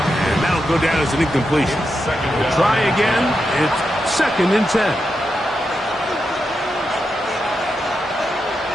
that'll go down as an incompletion. We'll try again. It's 2nd and 10.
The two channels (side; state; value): both; normal; correlation 0.86